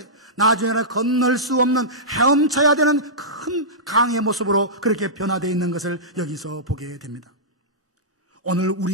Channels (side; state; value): both; normal; correlation -0.14